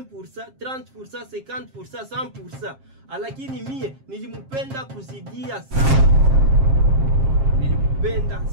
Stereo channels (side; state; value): left; late; 7.5 ms